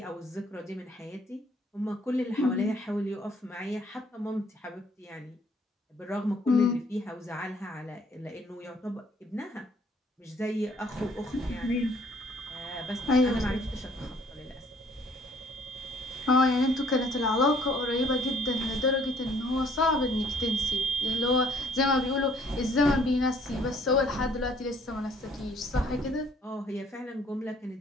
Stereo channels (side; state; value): both; normal; correlation 0.61